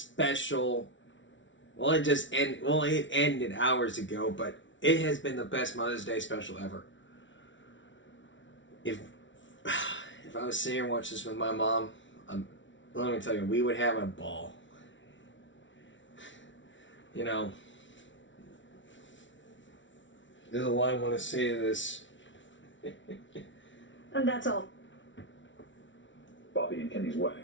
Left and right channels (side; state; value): right; late; 0.55 ms